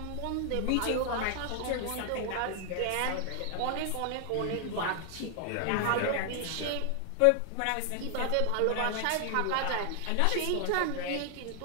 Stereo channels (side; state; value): both; different; correlation 0.00